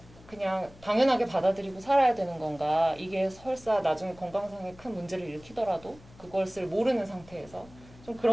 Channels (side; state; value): left; noise; hum, 22 dB below the sound